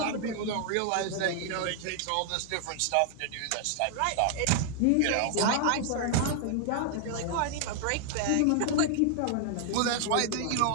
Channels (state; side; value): different; both; correlation 0.00